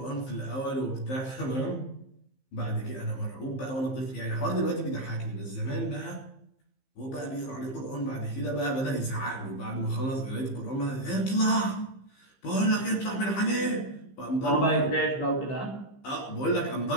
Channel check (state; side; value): late; right; 15 ms